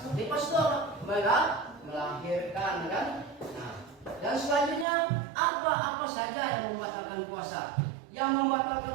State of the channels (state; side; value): drops out; left; at 4.9 s